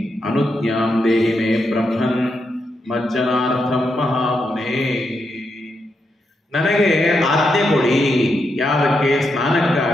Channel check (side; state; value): both; normal; correlation 0.83